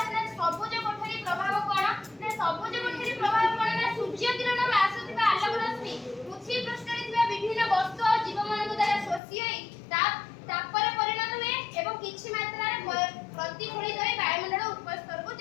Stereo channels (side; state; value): right; drops out; at 9.2 s